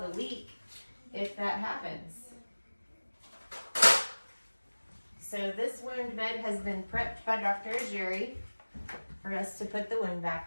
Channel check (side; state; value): both; inverted; correlation -1.00